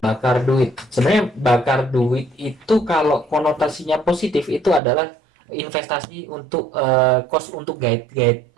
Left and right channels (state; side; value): drops out; left; at 4.8 s